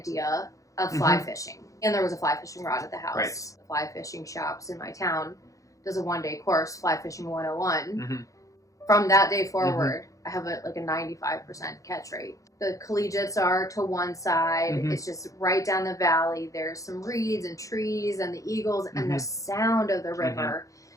of fly fishing. And there was a fly fishing rod at the house. Right. The fly fishing shops in my town does a 1-day course, Fly Fishing 101. From that day forward, I have a 95% catch rate. The collegiates are to one side. It's just right down the valley. There's some reeds and trees and the eagles and the sound of the river.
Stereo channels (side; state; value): right; late; 0.16 ms